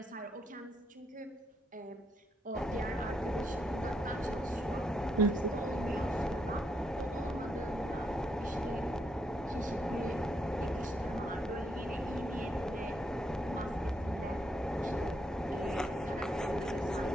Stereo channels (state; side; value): normal; both; correlation 0.77